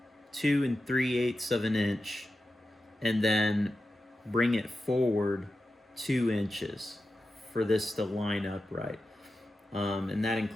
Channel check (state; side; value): normal; both; correlation 0.91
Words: 3/8 of an inch and then bring it forward 2 inches for this to line up right. And that